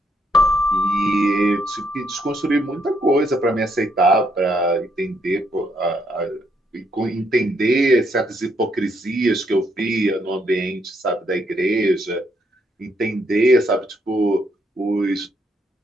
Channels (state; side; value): normal; both; correlation 0.74